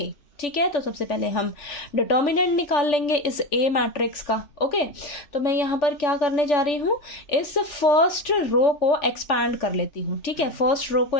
ठीक है, तो सबसे पहले हम डिटर्मिनेंट निकाल लेंगे इस ए मैट्रिक्स का। ओके, तो मैं यहाँ पर क्या करने जा रही हूँ, इस फर्स्ट रो को एक्सपैंड कर लेती हूँ। ठीक है, फर्स्ट रो को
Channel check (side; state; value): right; late; 3.4 ms